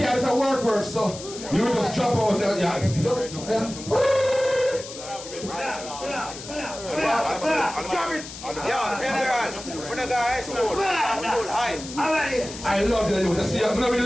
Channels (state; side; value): noise; left; hiss, 12 dB below the sound